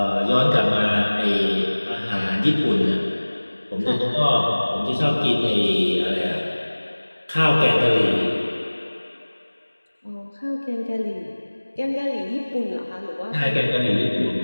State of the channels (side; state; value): both; inverted; correlation -1.00